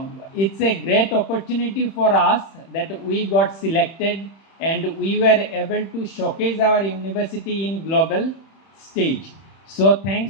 it's a great opportunity for us that we got selected and we were able to showcase our university in global stage. So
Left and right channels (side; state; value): right; late; 31 ms